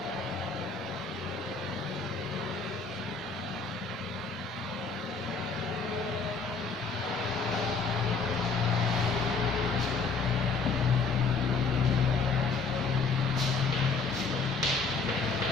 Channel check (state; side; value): quieter; right; 4.4 dB